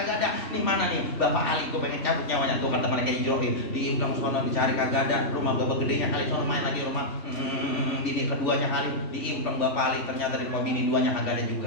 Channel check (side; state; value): right; late; 3.4 ms